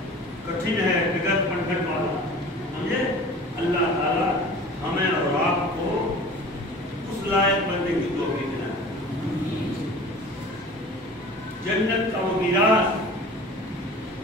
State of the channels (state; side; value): normal; both; correlation 0.41